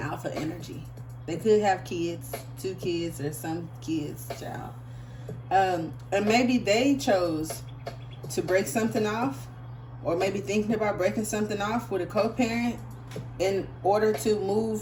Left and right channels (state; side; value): identical; both; correlation 1.00